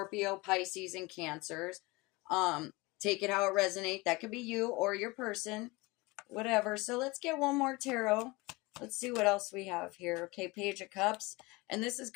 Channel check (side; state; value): right; quieter; 23.8 dB